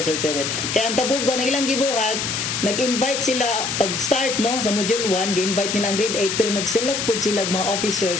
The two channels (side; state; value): left; noise; hiss, 2 dB below the sound